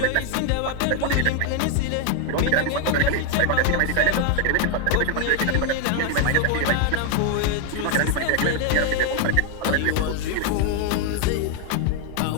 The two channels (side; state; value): both; different; correlation 0.01